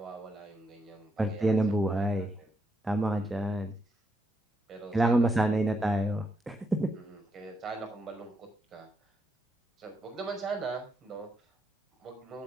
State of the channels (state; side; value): normal; both; correlation 0.79